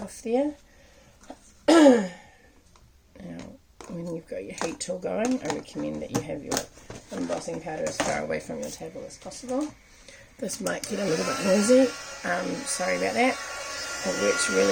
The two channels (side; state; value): both; identical; correlation 1.00